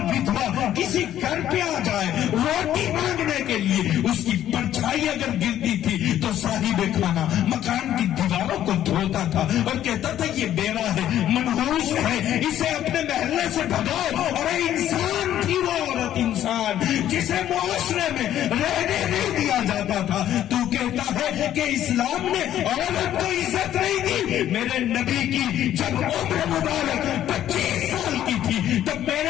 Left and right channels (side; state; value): right; quieter; 11.7 dB